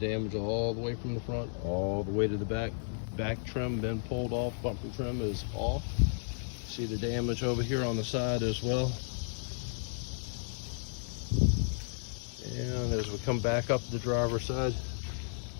all the way from the front all the way to the back. Back trim been pulled off, bumper trim is off. See the damage over here on the side as well. And as we come back up the driver's side,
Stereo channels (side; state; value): right; silent; digital silence